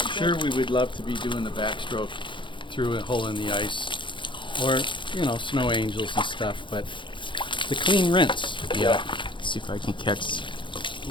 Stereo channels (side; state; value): right; late; 0.23 ms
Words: sure, we would love to be doing the backstroke through a hole in the ice, or snow angels and stuff, but the clean rinse. Yeah. See if I can catch